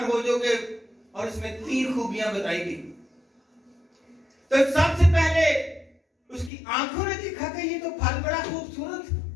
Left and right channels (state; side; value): drops out; right; at 6.5 s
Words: हो जाओगे, और इसमें 3 खूबियां बताई गई। तो सबसे पहले उसकी आंखों ने देखा कि ये तो फल बड़ा खूबसूरत,